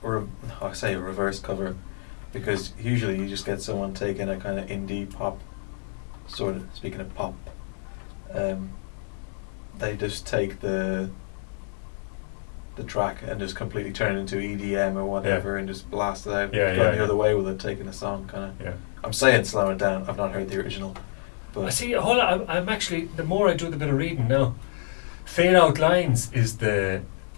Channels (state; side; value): silent; right; digital silence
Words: or I say a reverse cover, because usually you just get someone taking a kind of indie pop, sort of, speaking of pop, they just take the track and just completely turn it into EDM or whatever and just blast it out. Going the other way with it, taking a song kind of. Yeah. I'm saying slow it down. I've not heard the original. I But see. Hold on. I'm actually, the more I do the bit of reading now, Fade Out Lines is the